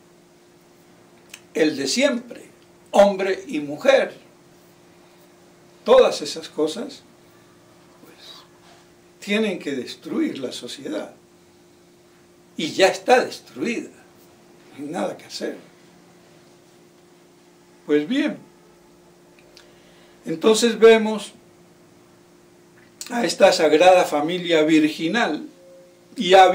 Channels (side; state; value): both; identical; correlation 1.00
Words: el de siempre, hombre y mujer. Todas esas cosas, pues, tienen que destruir la sociedad. Y ya está destruida, no hay nada que hacer. Pues bien, entonces vemos a esta Sagrada Familia virginal, y ha